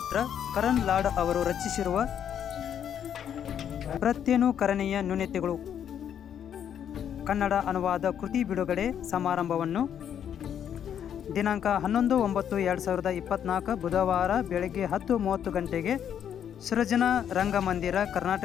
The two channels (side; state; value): right; quieter; 9.1 dB